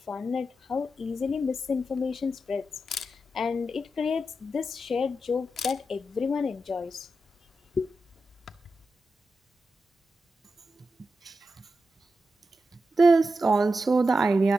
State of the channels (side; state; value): both; normal; correlation 0.89